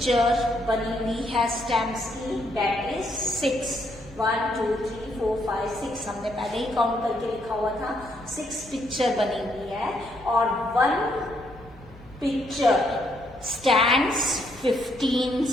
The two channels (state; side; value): noise; left; hum, 23 dB below the sound